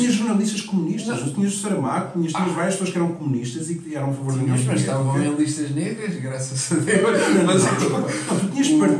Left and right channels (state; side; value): identical; both; correlation 1.00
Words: comunistas, tu tinhas o Saramago, tinhas várias pessoas que eram comunistas e que eram a favor da União Soviética. Mas estavam em listas negras, graças a Deus. Tu tinhas